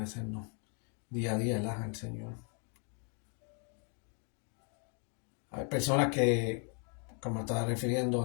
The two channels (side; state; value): right; quieter; 40.0 dB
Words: día a día al Señor. Hay personas que, como estaba refiriendo